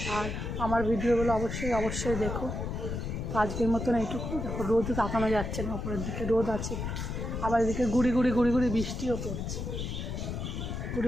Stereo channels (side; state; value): left; noise; rumble, 4 dB below the sound